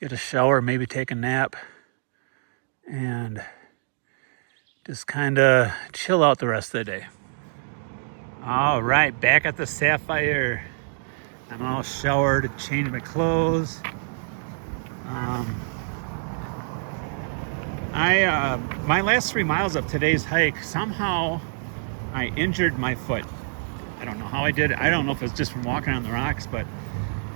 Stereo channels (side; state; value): left; silent; digital silence